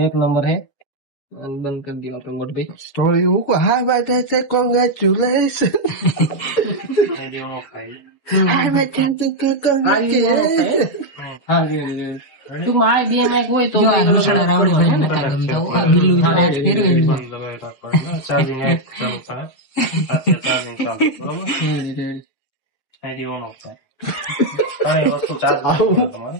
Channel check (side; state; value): right; late; 7.5 ms